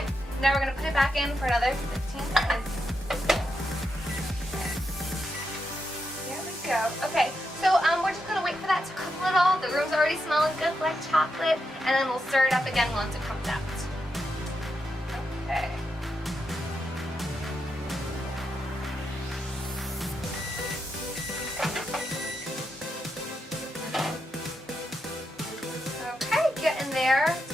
now we're gonna put it back in for another 15 seconds. There we go. Okay, so we're just gonna wait for that to cook a little. The room's already smelling good like chocolate, and then we'll stir it up again once it comes out. Okay. Getting there.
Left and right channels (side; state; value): both; normal; correlation 0.84